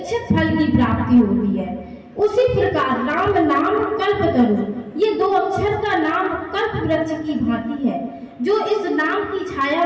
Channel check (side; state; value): both; identical; correlation 1.00